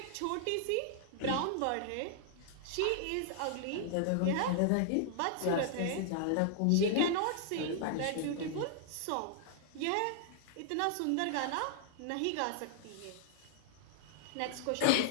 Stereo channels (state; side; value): different; both; correlation -0.01